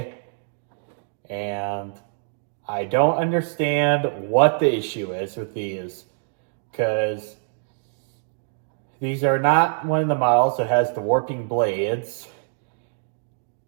and I don't understand what the issue is with these, because these are not one of the models that has the warping blades.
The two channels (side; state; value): left; silent; digital silence